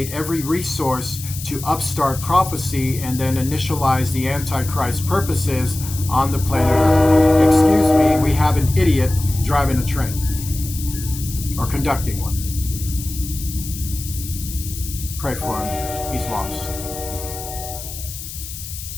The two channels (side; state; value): left; noise; hiss, 11 dB below the sound